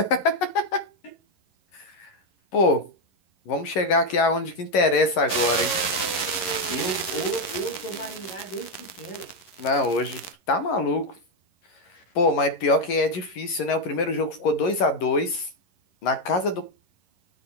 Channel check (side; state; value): right; late; 11 ms